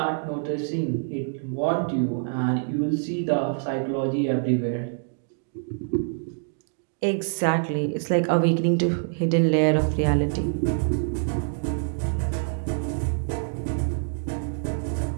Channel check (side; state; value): left; silent; digital silence